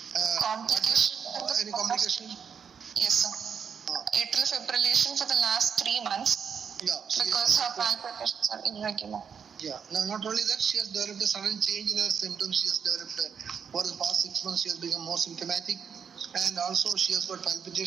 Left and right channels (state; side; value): quieter; left; 6.9 dB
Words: Complication. Any complication? Yes, sir. Atrial fibrillation for the last 3 months Yeah. because her palpitations are irregular. Yeah. Now, not only that, she has developed a sudden change in her symptoms. She has developed, for the past 6 months, she has become more symptomatic. And also, she has got